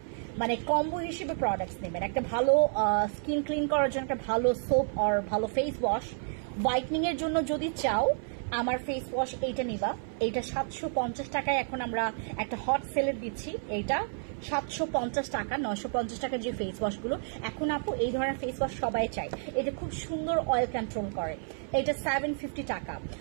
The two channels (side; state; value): left; silent; 57 dB below the other